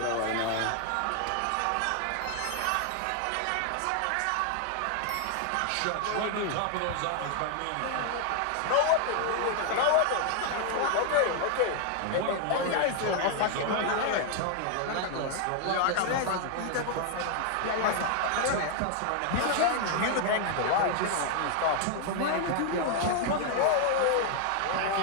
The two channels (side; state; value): both; different; correlation 0.00